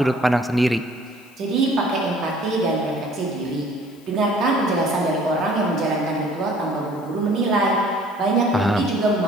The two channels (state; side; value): noise; left; hiss, 28 dB below the sound